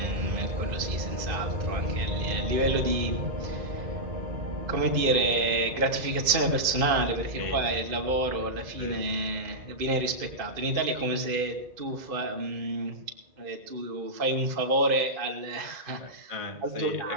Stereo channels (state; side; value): late; left; 2.5 ms